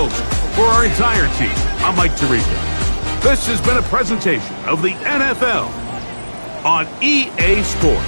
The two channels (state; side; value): inverted; both; correlation -1.00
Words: our entire team, I'm Mike Tirico. This has been a presentation of the NFL on EA Sports.